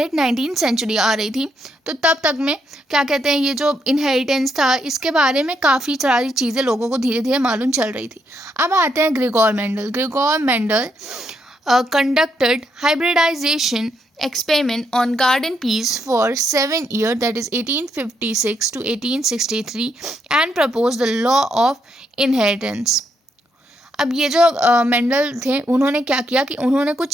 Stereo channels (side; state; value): both; normal; correlation 0.77